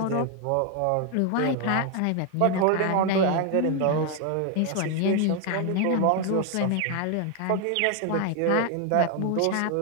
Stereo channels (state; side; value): different; both; correlation 0.01